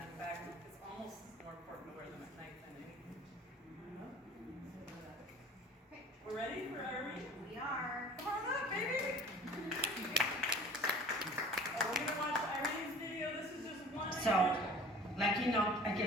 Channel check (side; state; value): both; normal; correlation 0.46